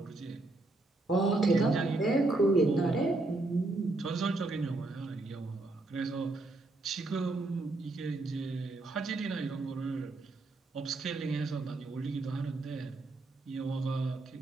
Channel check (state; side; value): quieter; left; 3.0 dB